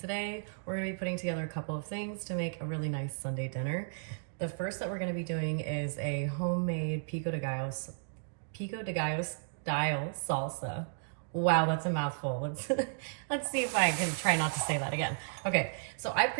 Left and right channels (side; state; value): left; silent; digital silence